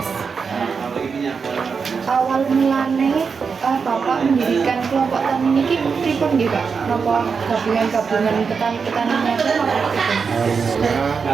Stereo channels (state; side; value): quieter; left; 5.6 dB